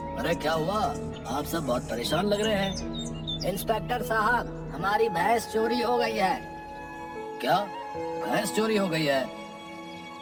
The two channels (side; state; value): both; identical; correlation 1.00